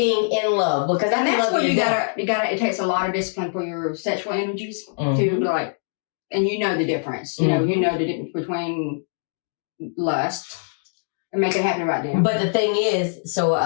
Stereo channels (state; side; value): silent; right; digital silence